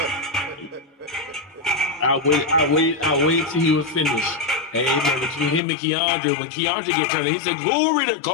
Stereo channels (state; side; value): drops out; right; at 5.6 s